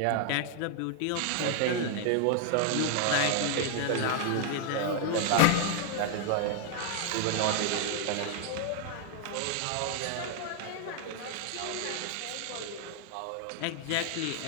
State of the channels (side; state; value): both; different; correlation 0.00